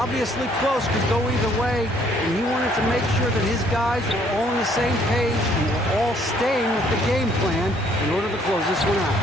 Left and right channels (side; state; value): both; normal; correlation 0.64